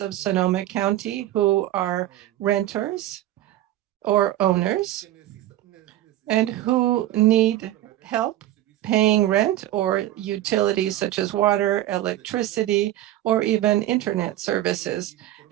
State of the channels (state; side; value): quieter; left; 14.1 dB